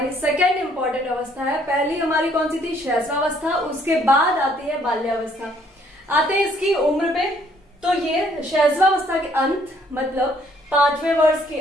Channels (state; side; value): normal; both; correlation 0.64